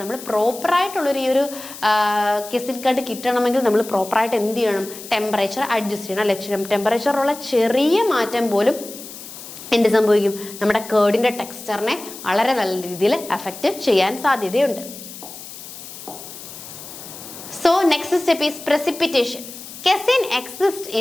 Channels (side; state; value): left; noise; hiss, 14 dB below the sound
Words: നമ്മൾ പ്രോപ്പറായിട്ടുള്ളൊരു ഈ ഒരു കെസിൻ കാർഡ് കിട്ടണമെങ്കിൽ നമ്മൾ പ്രോപ്പറായിട്ട് എന്ത് ചെയ്യണം? ടെമ്പറേച്ചർ അഡ്ജസ്റ്റ് ചെയ്യണം അല്ലെ? ടെമ്പറേച്ചറുള്ള ചെറിയ മാറ്റം പോലും എന്ത് സംഭവിക്കും? നമ്മുടെ കേർഡിന്റെ ടെക്സ്ചറിനെ വളരെ നല്ല രീതിയിൽ അഫക്റ്റ് ചെയ്യാൻ സാധ്യതയുണ്ട്. So next step is precipitation. Casein exist